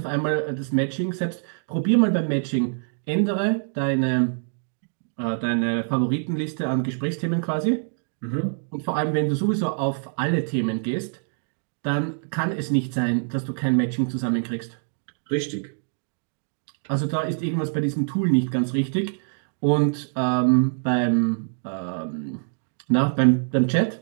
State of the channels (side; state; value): left; silent; digital silence